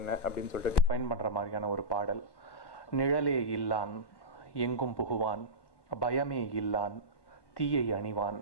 அப்படின்னு சொல்லிட்டு டிஃபைன் பண்ணுற மாதிரியான ஒரு பாடல். நிழலே இல்லான் எங்கும் புகுவான், பயமே இல்லான் தீயை அணிவான்,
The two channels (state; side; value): late; right; 1.1 ms